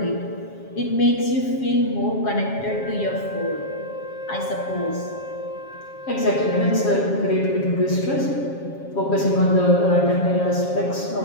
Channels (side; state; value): right; late; 7.3 ms